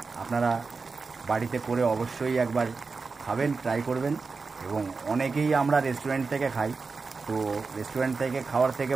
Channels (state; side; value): quieter; left; 4.4 dB